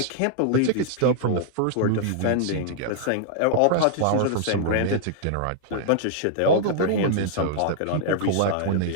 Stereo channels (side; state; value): both; different; correlation -0.01